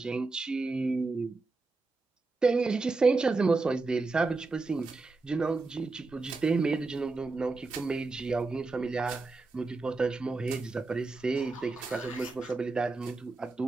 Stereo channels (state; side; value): quieter; left; 3.7 dB